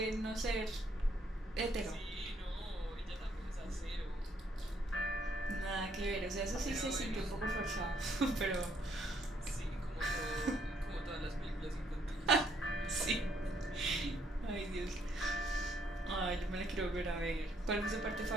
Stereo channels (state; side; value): normal; both; correlation 0.69